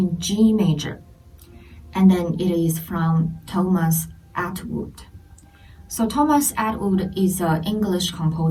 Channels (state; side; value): identical; both; correlation 1.00